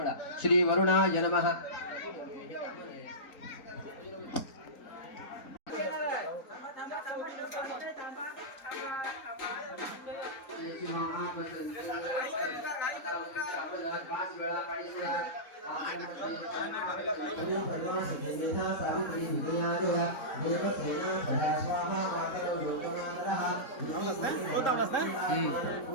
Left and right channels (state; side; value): late; right; 4.0 ms